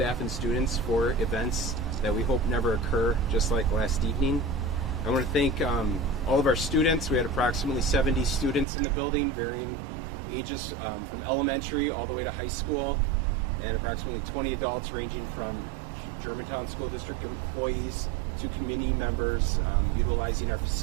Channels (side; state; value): left; drops out; at 8.7 s